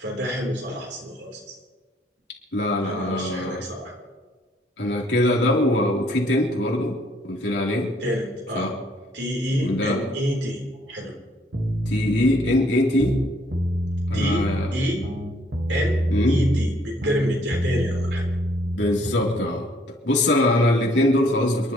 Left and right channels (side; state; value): both; normal; correlation 0.65